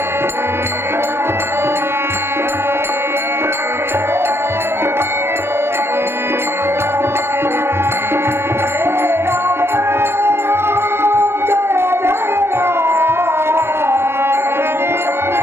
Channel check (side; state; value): left; late; 0.12 ms